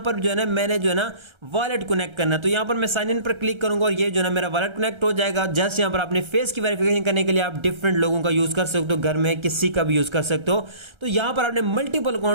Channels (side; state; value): left; late; 1.3 ms